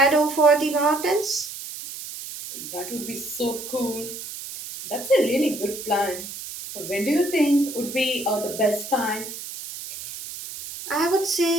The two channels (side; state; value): right; noise; hiss, 10 dB below the sound